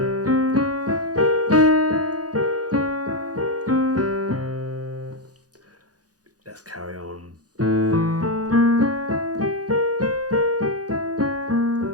Let's carry on.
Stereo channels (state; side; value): late; left; 0.68 ms